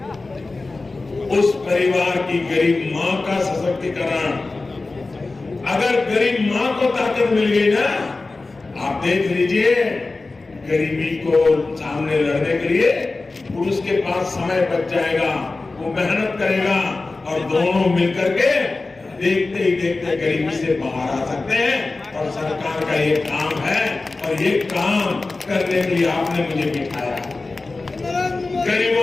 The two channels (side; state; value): right; quieter; 3.5 dB